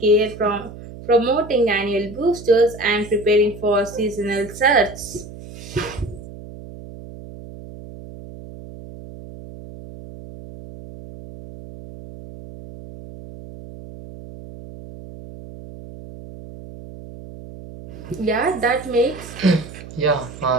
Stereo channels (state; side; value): noise; right; hum, 15 dB below the sound